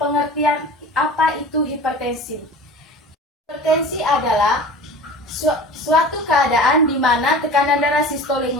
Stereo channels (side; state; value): both; normal; correlation 0.38